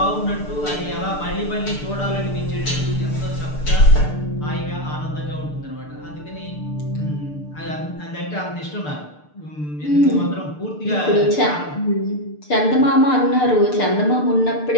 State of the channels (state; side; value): late; right; 6.7 ms